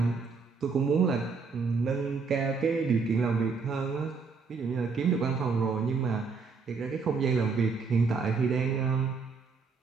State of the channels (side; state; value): left; quieter; 4.8 dB